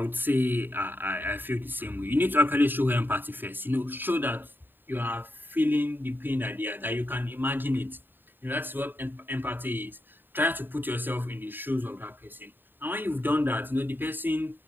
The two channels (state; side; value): late; left; 0.094 ms